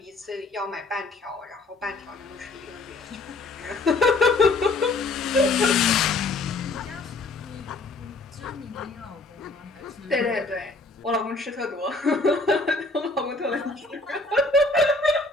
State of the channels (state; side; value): quieter; right; 3.3 dB